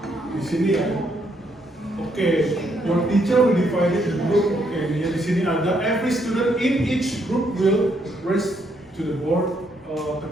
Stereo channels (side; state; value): both; normal; correlation 0.74